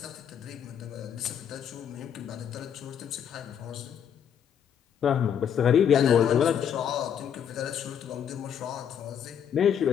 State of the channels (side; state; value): right; quieter; 8.6 dB